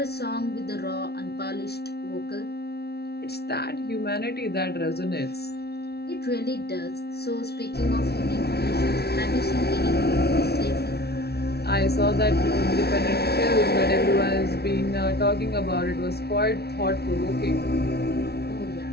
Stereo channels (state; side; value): late; right; 0.47 ms